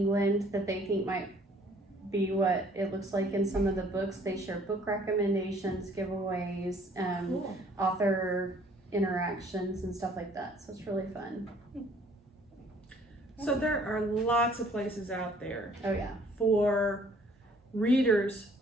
that they think might be what it looks like in some of the books. They share book recommendations, giveaways, Cool. author interactions and stuff like that. So it's really fun. So there are lots of places out there Oh yeah. for readers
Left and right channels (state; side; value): normal; both; correlation 0.58